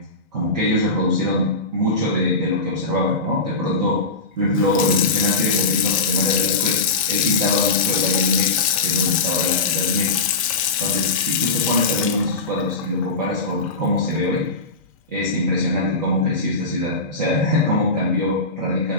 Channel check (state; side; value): quieter; right; 3.4 dB